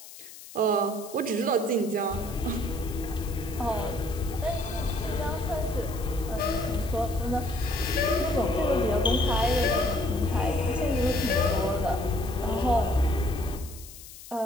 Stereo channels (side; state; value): left; noise; hiss, 16 dB below the sound